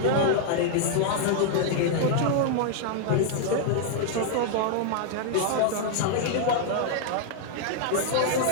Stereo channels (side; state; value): both; different; correlation -0.01